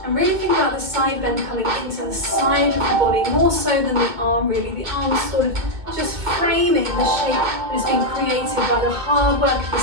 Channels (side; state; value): left; late; 2.2 ms